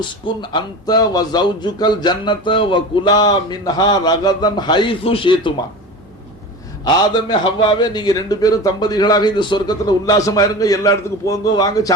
அன்த வ ஜௌஜுகல் ஜன்னத வ குலா மின்ஹா ரகதன் ஹைது ஷீதுமா. ஆதமே ஹவ்வாவே, நீங்க 2 பேரும் தம்பதிகளாக இந்த சொர்க்கத்துல உல்லாசமா இருங்க, எல்லா இடத்துக்கு போங்க, வாங்க,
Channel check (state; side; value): normal; both; correlation 0.31